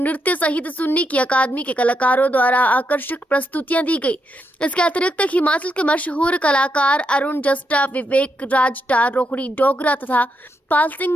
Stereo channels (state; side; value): normal; both; correlation 0.81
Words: सहित सुन्नी की अकादमी के कलाकारों द्वारा आकर्षक प्रस्तुतियां दी गई। इसके अतिरिक्त हिमाचल के मशहूर कलाकार अरुण जस्टा, विवेक राजटा, रोहड़ी डोगरा तथा पाल